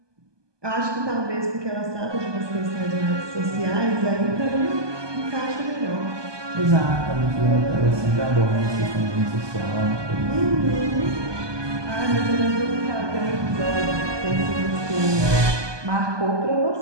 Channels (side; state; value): left; late; 1.2 ms